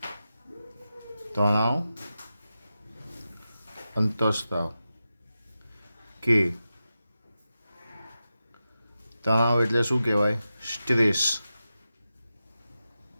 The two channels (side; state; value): both; inverted; correlation -0.92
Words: કે તણાવ એટલે શું કહેવાય? Stress